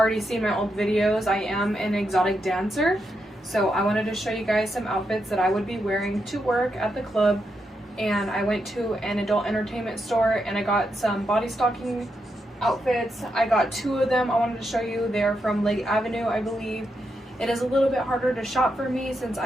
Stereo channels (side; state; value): both; normal; correlation 0.83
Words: seen my old videos, I am an exotic dancer. So I wanted to show you guys some outfits that I would be wearing to work at the club. And I went to an adult entertainment store and I got some body stocking outfits. I got two of them I wanted to show you. They're from Lake Avenue, I believe. It is a little bit harder to shop for me since